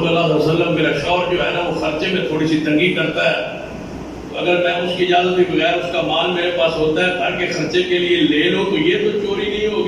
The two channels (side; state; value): both; identical; correlation 1.00